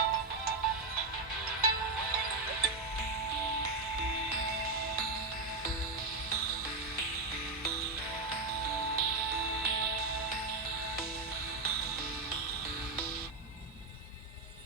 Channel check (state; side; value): quieter; left; 3.6 dB